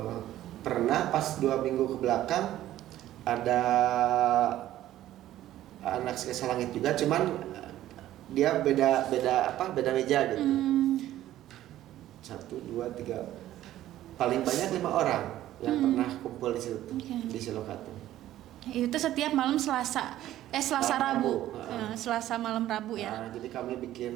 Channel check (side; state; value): left; quieter; 13.5 dB